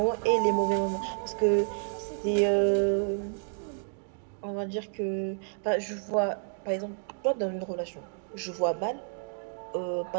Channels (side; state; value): left; silent; digital silence